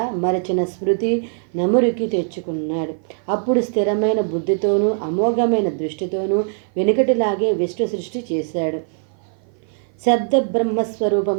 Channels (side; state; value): left; silent; 55 dB below the other